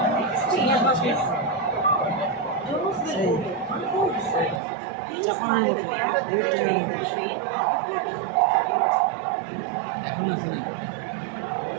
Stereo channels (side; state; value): left; drops out; at 4.6 s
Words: এখন আছে না